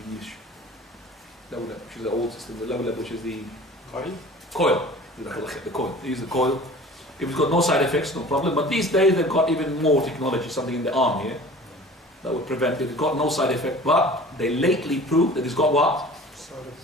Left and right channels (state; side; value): normal; both; correlation 0.43